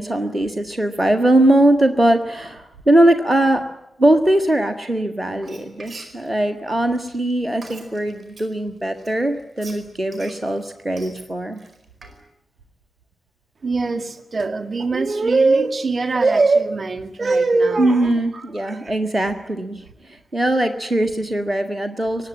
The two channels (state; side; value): normal; both; correlation 0.89